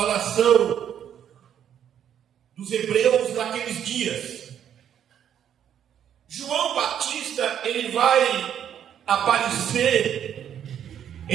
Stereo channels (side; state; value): left; quieter; 9.5 dB